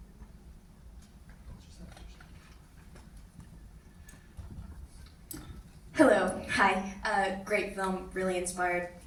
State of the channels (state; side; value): identical; both; correlation 1.00